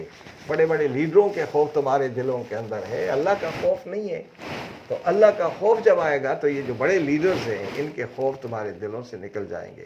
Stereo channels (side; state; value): both; identical; correlation 1.00